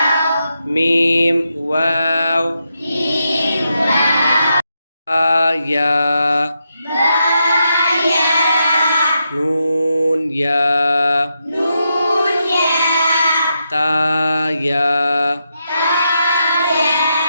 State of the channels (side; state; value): both; inverted; correlation -0.84